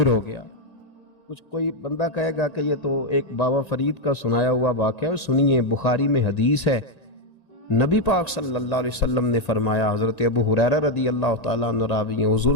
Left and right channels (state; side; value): late; right; 1.9 ms